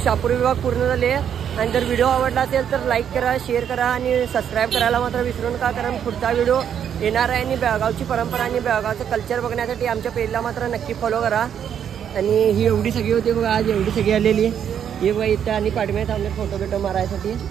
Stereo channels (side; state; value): left; quieter; 8.8 dB